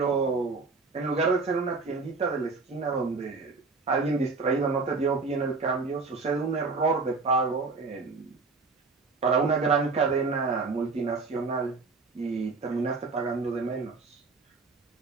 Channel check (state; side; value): quieter; left; 4.2 dB